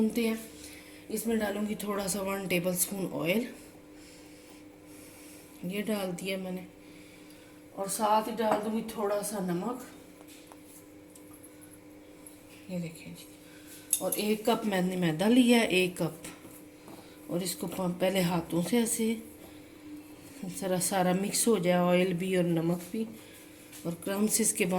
हैं। इसमें डालूंगी थोड़ा सा 1 टेबल स्पून ऑयल, ये डाल दिया मैंने, और साथ ही डाल दूंगी थोड़ा सा नमक, ये देखिए जी। और 1 कप मैंने मैदा लिया है, 1 कप। और इसको पहले हाथों से ऐसे जरा सारा मिक्स हो जाए, ऑयल भी और नमक भी, और क्रम्स इसके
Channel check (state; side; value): identical; both; correlation 1.00